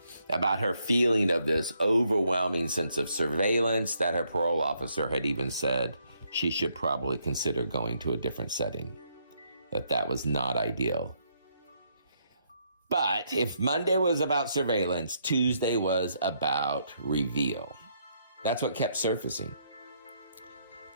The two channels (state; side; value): inverted; both; correlation -0.73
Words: about her feeling of this overwhelming sense of surveillance that her parole officer had even said she should probably consider going to a different setting, that was not ideal. But if Monday was about surveillance, Tuesday was about reveal. That's what kept surfacing.